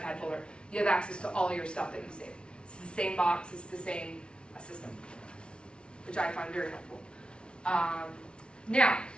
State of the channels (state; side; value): late; right; 0.057 ms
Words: folder, you have access to all your stuff that you save. It's the same box, it's the same system, which I find very helpful. Now,